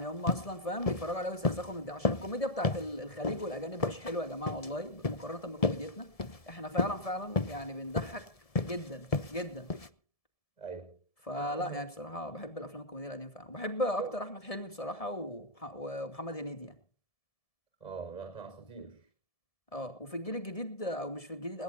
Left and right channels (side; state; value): right; late; 1.7 ms